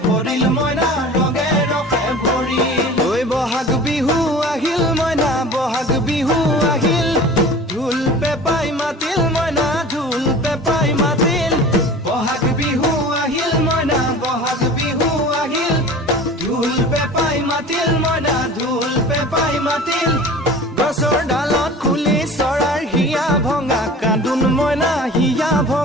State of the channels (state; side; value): normal; both; correlation 0.40